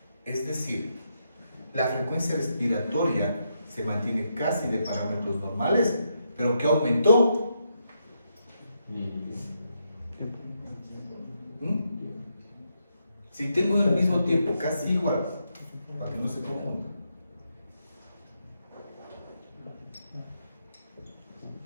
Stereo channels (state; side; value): inverted; both; correlation -0.81